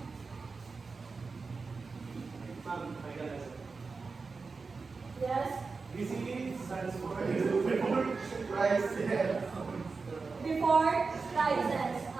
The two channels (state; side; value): quieter; left; 4.4 dB